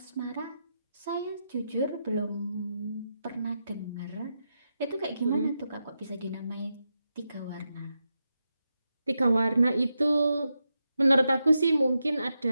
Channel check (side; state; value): both; inverted; correlation -0.87